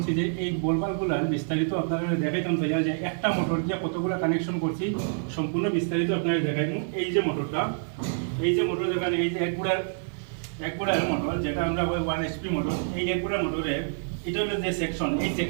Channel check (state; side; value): silent; left; 58 dB below the other